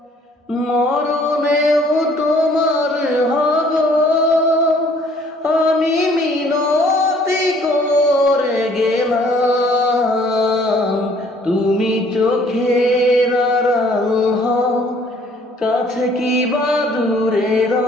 মরণেও তোমার হব। আমি মিনতি করে গেলাম, তুমি চোখের আড়াল হও, কাছে কি বা দূরে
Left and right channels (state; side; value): normal; both; correlation 0.59